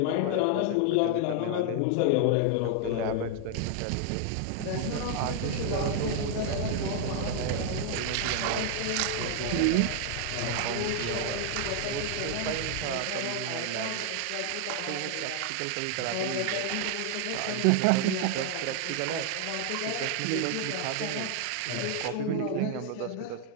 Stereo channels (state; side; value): different; both; correlation 0.00